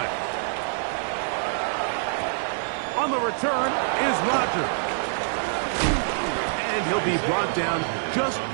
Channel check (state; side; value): silent; left; digital silence